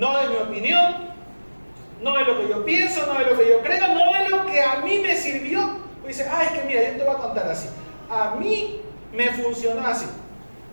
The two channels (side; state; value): both; inverted; correlation -1.00